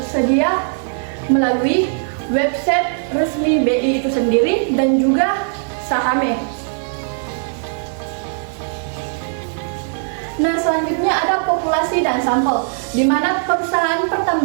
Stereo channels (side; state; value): left; silent; 61 dB below the other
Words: melalui website resmi BI itu sendiri dan juga Sahame. Nah, selanjutnya ada populasi dan sampel, di mana perusahaan